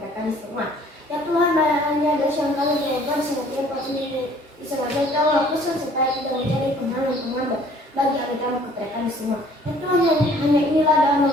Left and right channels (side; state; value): both; normal; correlation 0.56